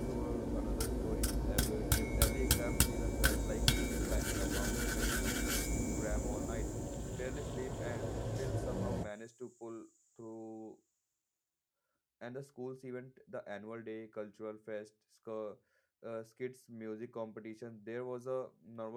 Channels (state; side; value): identical; both; correlation 1.00